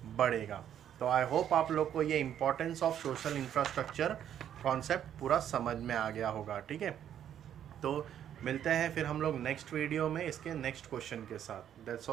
बढ़ेगा। तो आई होप आप लोग को ये importance of social infrastructure concept पूरा समझ में आ गया होगा। ठीक है, तो मिलते हैं फिर हम लोग नेक्स्ट वीडियो में इसके नेक्स्ट क्वेश्चन के साथ। That's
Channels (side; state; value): left; quieter; 10.0 dB